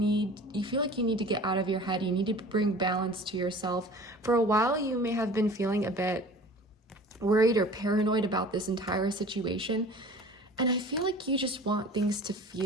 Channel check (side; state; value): both; normal; correlation 0.43